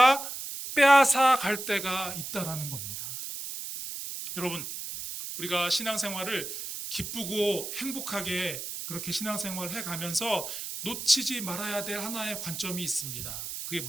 빼앗아 갈 때가 있다라는 겁니다. 여러분 우리가 신앙생활을 기쁘고 행복하게 그렇게 신앙생활을 해가면서 놓치지 말아야 될 하나의 관점이 있습니다. 그게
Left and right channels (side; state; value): right; noise; hiss, 7 dB below the sound